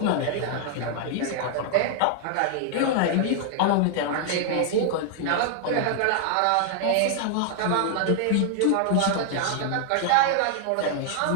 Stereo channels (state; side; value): different; both; correlation 0.00